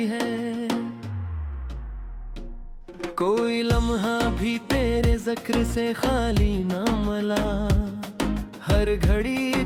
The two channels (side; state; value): both; identical; correlation 1.00